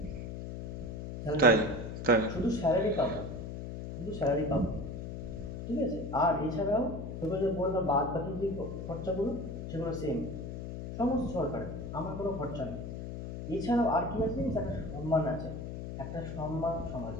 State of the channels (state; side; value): noise; left; hum, 7 dB below the sound